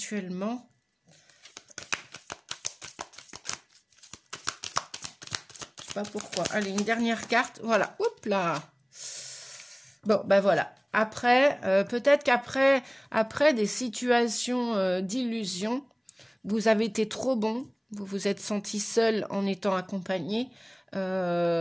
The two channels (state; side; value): identical; both; correlation 1.00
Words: pas pourquoi. Allez, une dernière carte. Voilà. Oups là. Bon, ben voilà. Après, peut-être qu'après des situations d'illusion, vous avez été trop bon. Vous vous êtes senti seul en étant accompagné.